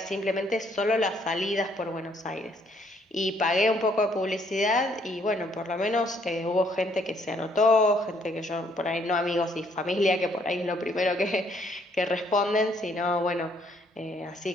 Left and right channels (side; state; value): both; normal; correlation 0.67